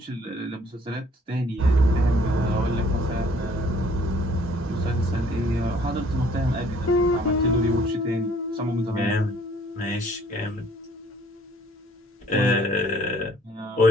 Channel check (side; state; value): both; normal; correlation 0.58